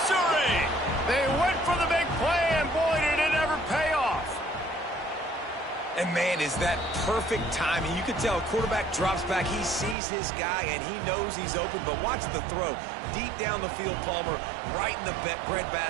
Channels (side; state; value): left; drops out; at 10.0 s